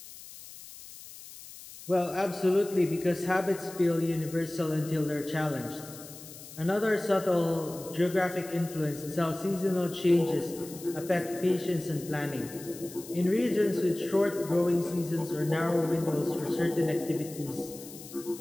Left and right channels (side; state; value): left; noise; hiss, 16 dB below the sound